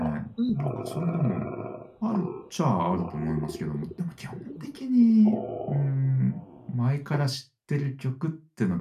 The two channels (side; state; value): both; identical; correlation 1.00